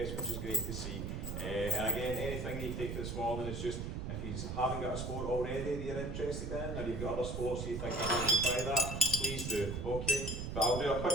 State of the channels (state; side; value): noise; right; rumble, 4 dB below the sound